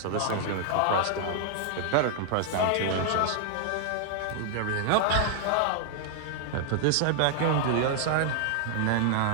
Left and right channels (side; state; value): both; different; correlation -0.01